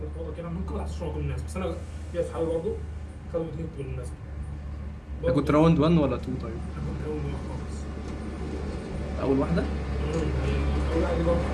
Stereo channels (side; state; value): both; identical; correlation 1.00